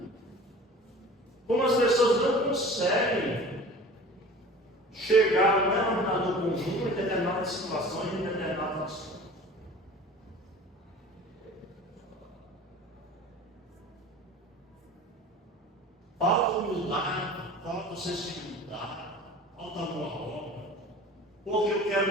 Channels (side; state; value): both; normal; correlation 0.41